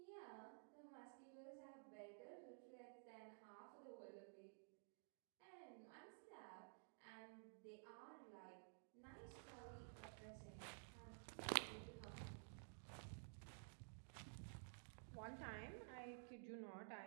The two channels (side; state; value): left; silent; digital silence